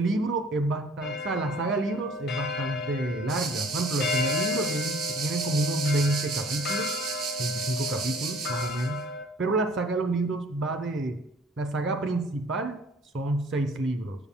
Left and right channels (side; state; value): both; normal; correlation 0.53